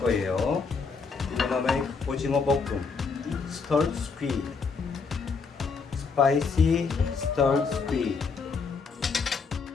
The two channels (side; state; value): right; quieter; 5.0 dB